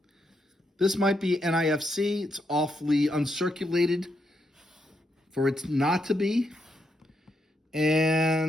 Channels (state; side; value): normal; both; correlation 0.80